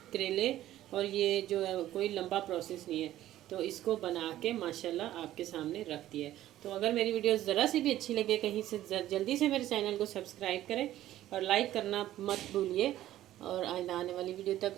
करेले, और ये जो है कोई लंबा प्रोसेस नहीं है, तो इसको बना के माशाल्लाह आपके सामने रख दिया है। तो अगर मेरी वीडियो ज़रा सी भी अच्छी लगे कहीं से जल्दी से मेरे चैनल को सब्सक्राइब करें और लाइक करना मत भूलिए। और आने वाली वीडियो तक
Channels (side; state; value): left; quieter; 13.7 dB